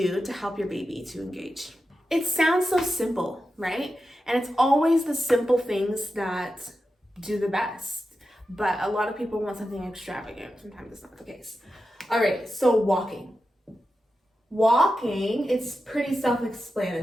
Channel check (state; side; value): normal; both; correlation 0.91